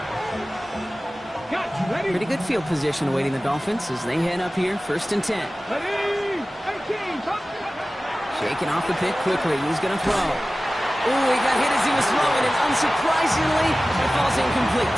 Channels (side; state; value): both; normal; correlation 0.96